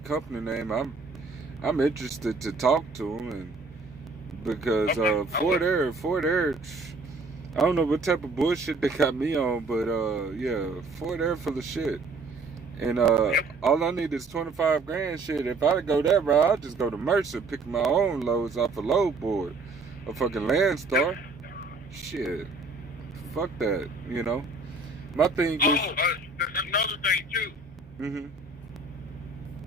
name. I'm interested to talk to them, and because Ford Air. I don't know what type of bullshit they got me on, but yeah, Ford Air full of shit. And all I need is 25 grand. Shit, if I go that route, I'll just go to Mercer, pick my own loads off a load board, a fucking Landstar. Shit, fuck that, you know. My thing is. Another thing too. Mm-hmm.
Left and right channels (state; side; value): quieter; left; 3.5 dB